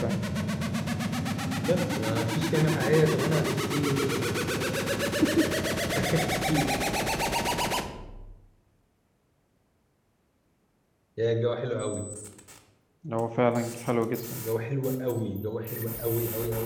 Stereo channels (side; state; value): both; identical; correlation 1.00